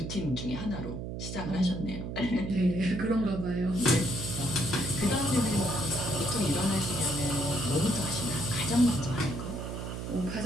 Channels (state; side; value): noise; right; hum, 6 dB below the sound